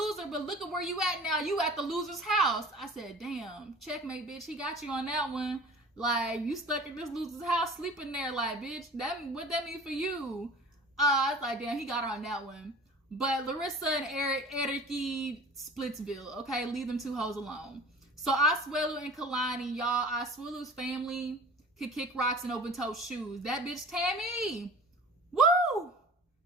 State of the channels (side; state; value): both; normal; correlation 0.42